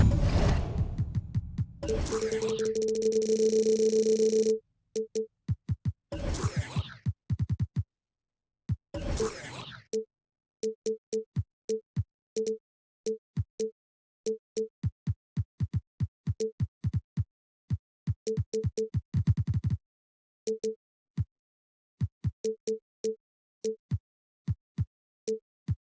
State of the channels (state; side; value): identical; both; correlation 1.00